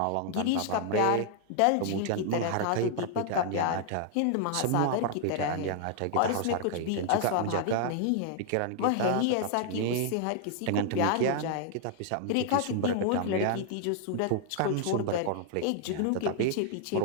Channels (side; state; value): both; different; correlation 0.00